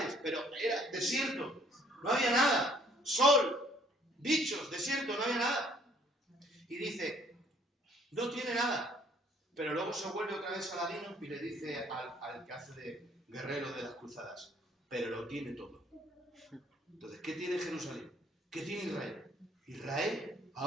pero era desierto, no había nada, sol, bichos, desierto, no había nada. Y dice, no tiene nada, pero luego se vuelve otra vez Saladino y le dice al que hace de guerrero de las cruzadas, pero lo tiene todo. Entonces, ¿qué tiene Jerusalén? ¿Qué tiene Israel? Israel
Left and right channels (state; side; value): normal; both; correlation 0.61